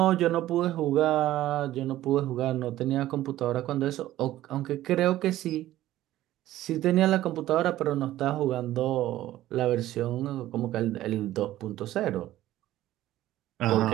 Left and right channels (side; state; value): left; quieter; 14.5 dB